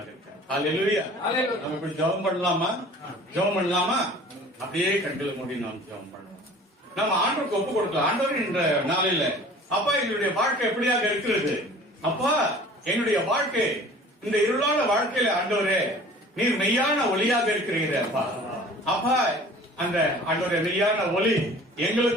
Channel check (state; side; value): normal; both; correlation 0.46